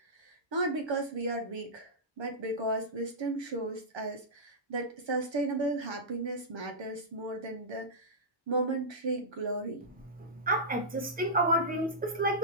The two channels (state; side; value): normal; both; correlation -0.14